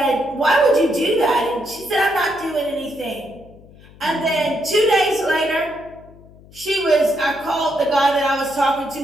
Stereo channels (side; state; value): left; noise; hum, 23 dB below the sound